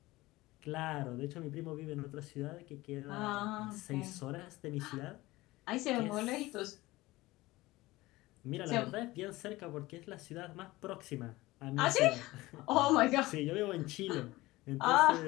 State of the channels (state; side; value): quieter; right; 19.3 dB